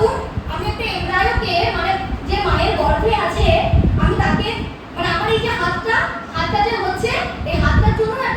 আমি একটা এমব্রায়োকে মানে যে মায়ের গর্ভে আছে আমি তাকে মানে আমার এই যে হাতটা যে হচ্ছে এই হাতটার জন্য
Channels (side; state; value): both; identical; correlation 1.00